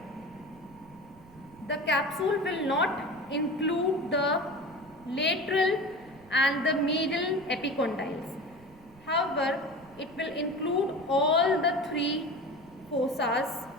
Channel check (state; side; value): noise; right; rumble, 24 dB below the sound